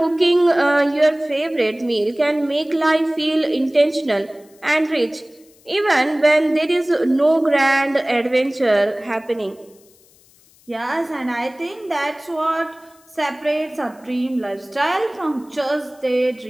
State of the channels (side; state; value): left; noise; hiss, 30 dB below the sound